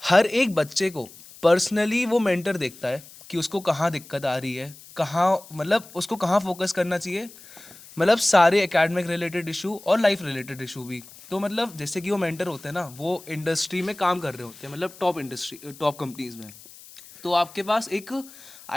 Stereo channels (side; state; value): left; noise; hiss, 20 dB below the sound